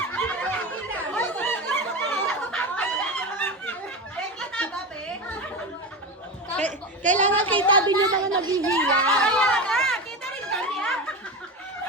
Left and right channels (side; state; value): both; normal; correlation 0.22